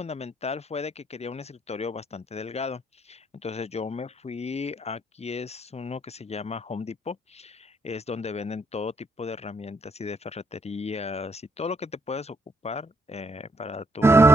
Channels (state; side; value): normal; both; correlation 0.71